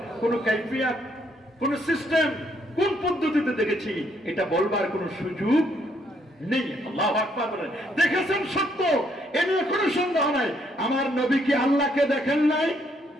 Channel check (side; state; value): both; normal; correlation 0.71